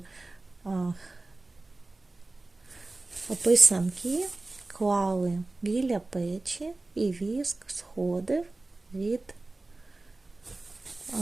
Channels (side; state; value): left; quieter; 3.1 dB